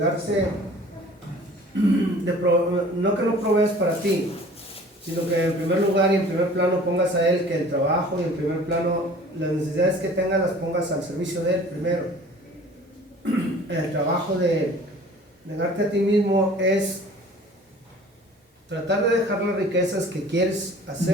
no que no provees para ti, sino que en primer lugar y en primer plano pongas a Él, que el trabajo y en primer plano las necesidades que tengas las pongas al servicio de Él primero. El trabajo de negarte a ti mismo es tratar de dejar las riquezas que quieres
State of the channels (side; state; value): both; normal; correlation 0.48